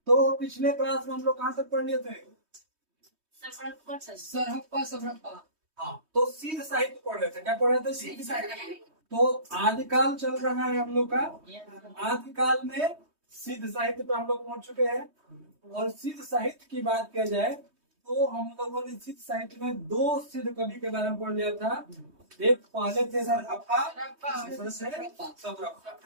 तो पिछले क्लास में हम लोग कहाँ तक पढ़ लिए थे? सरहप्पा सरहप्पा। हाँ, तो सिद्ध साहित्य पढ़ रहे थे। क्या पढ़ रहे थे? सिद्ध साहित्य। तो आदिकाल चल रहा है हम लोग का। आदिकाल में सिद्ध साहित्य पे हम लोग पहुंच चुके हैं। और सिद्ध साहित्य की बात किया जाए तो हम लोगों ने सिद्ध साहित्य में दो सिद्ध कवि के बारे में पढ़ लिया था। एक पहले थे सरहप्पा, दूसरे से सरहप्पा।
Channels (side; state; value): left; late; 3.2 ms